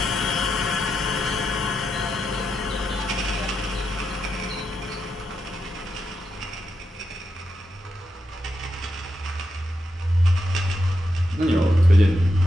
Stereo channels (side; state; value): both; normal; correlation 0.85